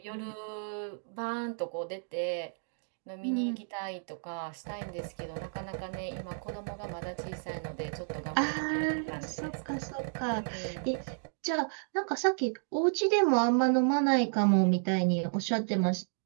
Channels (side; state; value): left; silent; digital silence